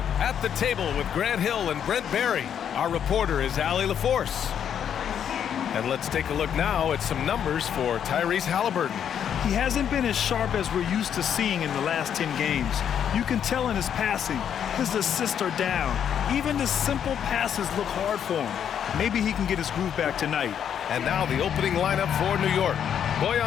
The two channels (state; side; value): quieter; right; 8.7 dB